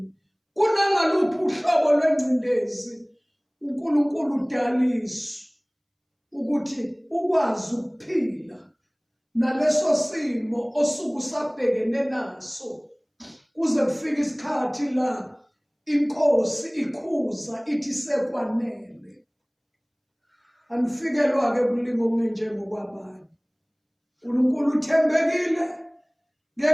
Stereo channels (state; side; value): identical; both; correlation 1.00